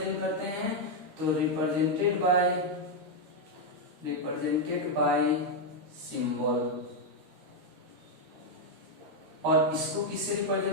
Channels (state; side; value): late; left; 13 ms